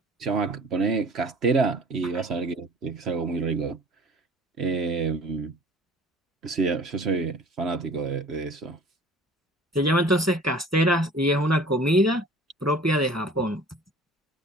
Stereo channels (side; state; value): both; normal; correlation 0.47